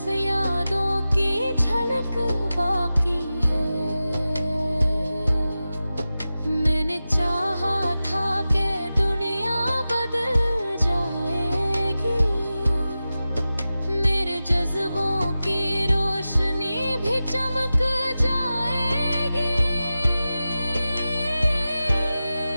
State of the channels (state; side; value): inverted; both; correlation -0.94